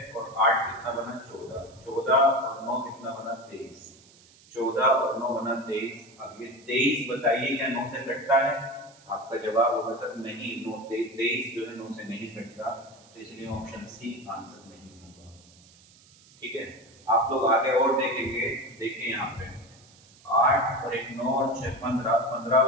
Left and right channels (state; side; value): noise; right; hiss, 26 dB below the sound